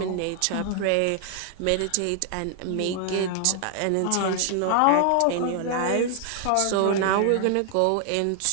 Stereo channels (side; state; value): both; different; correlation 0.00